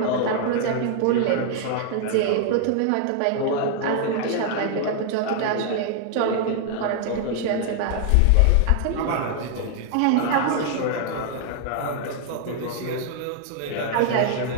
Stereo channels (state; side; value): different; both; correlation 0.00